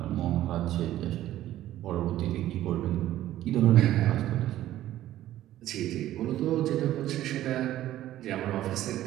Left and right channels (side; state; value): left; quieter; 13.6 dB